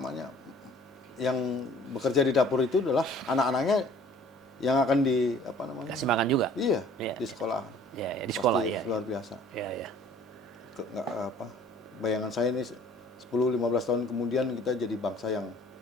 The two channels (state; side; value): normal; both; correlation 0.53